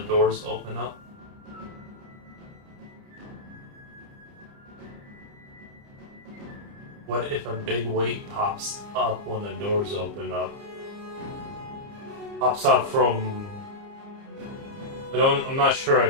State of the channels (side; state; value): left; late; 30 ms